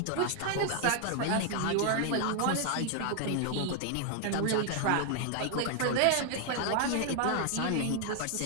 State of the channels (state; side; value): different; both; correlation 0.00